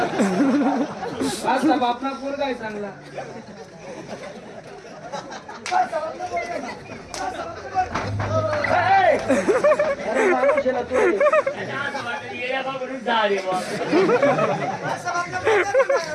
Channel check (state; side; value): identical; both; correlation 1.00